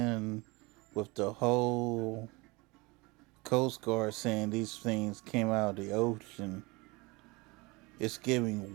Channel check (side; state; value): left; quieter; 24.9 dB